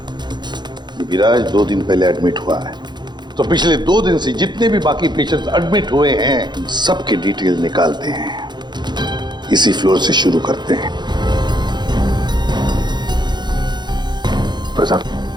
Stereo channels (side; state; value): left; late; 0.21 ms